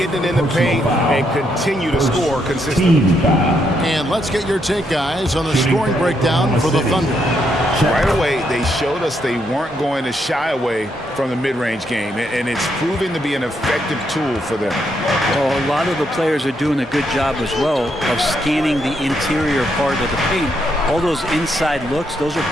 it in the paint and continue to score consistently. And let's get your take, guys, on the scoring breakdown for the Thunder. Right away, they showed us they weren't going to shy away from the mid-range game, and it's proving to be an effective tool for them. Well, a lot of the players are doing a good job as well of scanning the interior part of the paint. All those inside looks, those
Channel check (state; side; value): normal; both; correlation 0.77